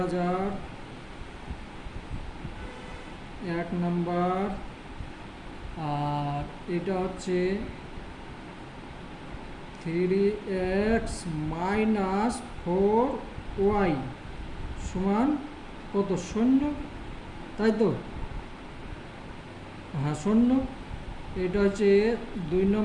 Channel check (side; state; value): both; identical; correlation 1.00